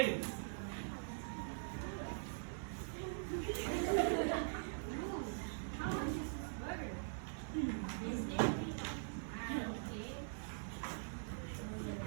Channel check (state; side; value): silent; left; digital silence